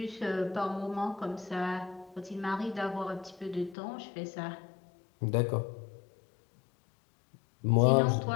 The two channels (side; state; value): right; drops out; at 3.8 s